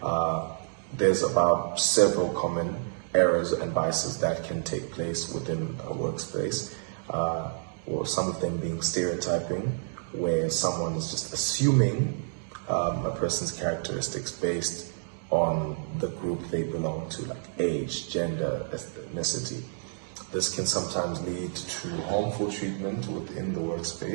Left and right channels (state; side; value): silent; left; digital silence